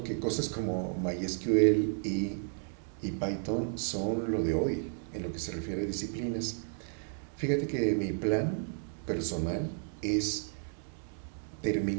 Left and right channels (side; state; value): left; silent; digital silence